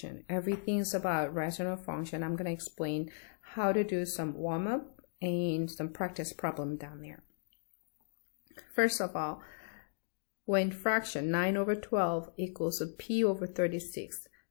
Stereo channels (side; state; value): right; silent; digital silence